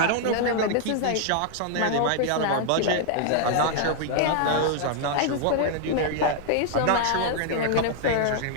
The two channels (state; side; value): different; both; correlation 0.00